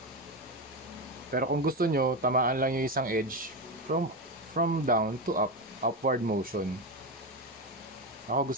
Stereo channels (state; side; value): normal; both; correlation 0.15